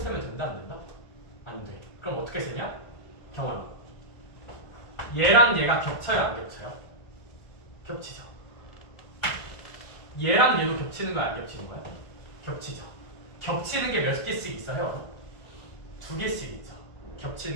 된다 안 된다? 안 돼. 그럼 어떻게 쓰냐? 경환아. 얘랑 얘가 겹쳐요 안 겹쳐요? 겹치죠. 얘랑 얘도 겹치는 거야 안 겹치는 거야? 겹치죠. 겹치는 게 몇 개씩 있어요? 2개씩 있죠.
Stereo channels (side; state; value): right; late; 1.5 ms